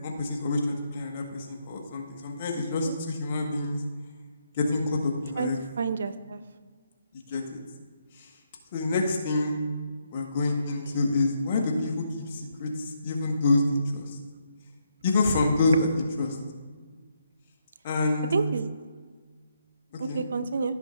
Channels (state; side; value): inverted; both; correlation -0.77